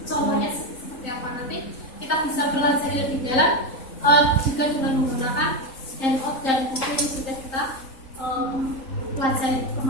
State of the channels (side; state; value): right; late; 3.9 ms